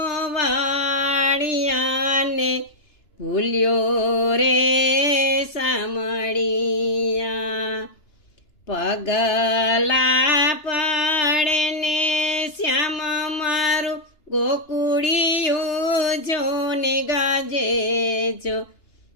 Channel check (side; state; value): right; late; 3.3 ms